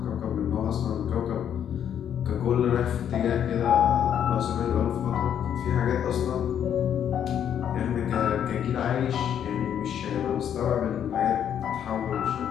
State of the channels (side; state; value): right; quieter; 9.2 dB